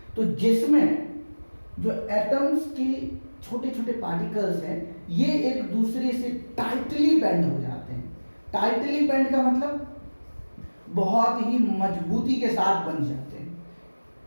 तो जिसमें जो एटम्स की छोटे छोटे पार्टिकल्स हैं, ये एक दूसरे से टाइटली बैंड हो जाते हैं। टाइटली बैंड का मतलब बहुत ही मजबूती के साथ बन जाते हैं,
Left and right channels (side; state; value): both; inverted; correlation -1.00